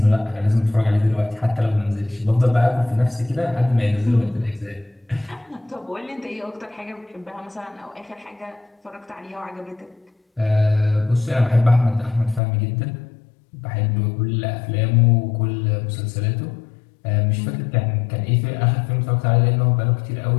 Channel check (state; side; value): drops out; right; at 12.4 s